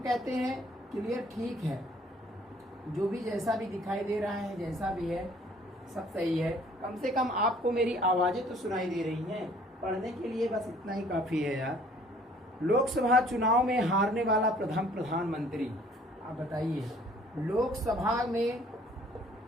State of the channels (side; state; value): both; normal; correlation 0.57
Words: कहते हैं क्लियर ठीक है, जो भी जैसा भी दिखाई दे रहा है, जैसा भी है सब सही है। कम से कम आपको मेरी आवाज़ें तो सुनाई दे रही हैं, पढ़ने के लिए बस इतना ही काफ़ी है यार। लोकसभा चुनाव में हारने वाला प्रथम प्रधानमंत्री, आप बताइए।